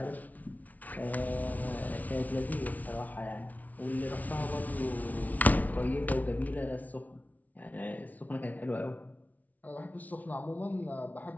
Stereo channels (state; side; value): late; right; 0.074 ms